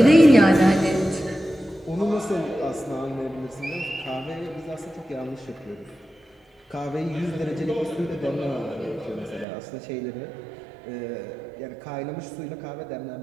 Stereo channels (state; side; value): drops out; left; at 9.5 s